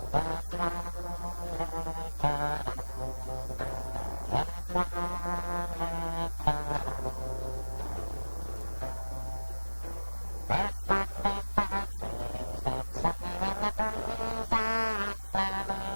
this wonderful land, this wonderful land. These wonderful trees that sing in the breeze are all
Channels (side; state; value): both; inverted; correlation -1.00